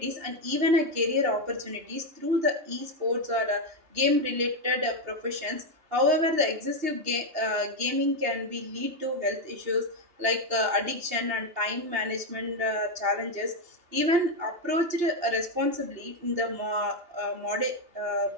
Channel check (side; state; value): left; late; 2.8 ms